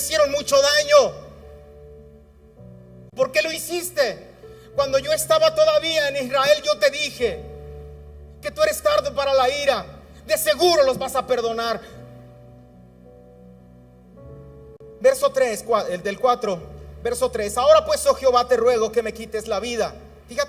mucho daño. ¿Por qué lo hiciste? Cuando yo estaba todavía en Israel, yo te dije que tú eres tardo para la ira. De seguro los vas a perdonar. Verso 3, el del 4, verso 3. Ahora pues, oh Jehová, te ruego que me quites la vida.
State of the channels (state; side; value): identical; both; correlation 1.00